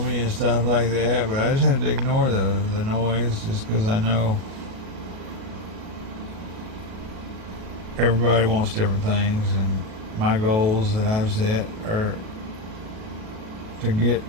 me and stuff like that?" But I just have to ignore the noise, just because I know everybody wants different things, and my goals that I've set are to get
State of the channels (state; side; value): late; left; 37 ms